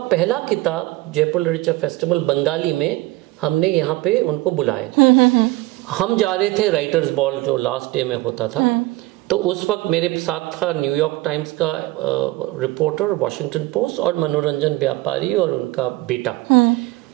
पहला किताब जयपुर लिटरेचर फेस्टिवल बंगाली में हमने यहाँ पे उनको बुलाए। हम जा रहे थे राइटर्स बॉल जो लास्ट डे में होता था। तो उस वक्त मेरे साथ था न्यूयॉर्क टाइम्स का रिपोर्टर, वॉशिंगटन पोस्ट, और मनोरंजन व्यापारी और उनका बेटा।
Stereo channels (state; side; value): quieter; left; 19.5 dB